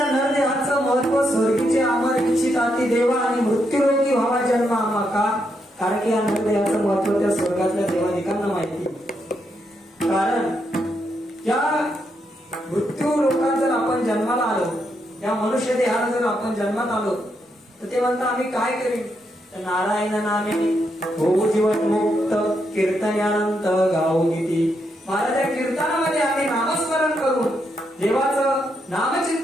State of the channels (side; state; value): both; normal; correlation 0.80